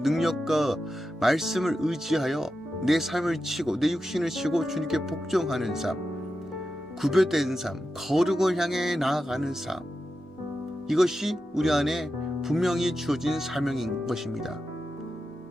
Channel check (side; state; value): both; normal; correlation 0.90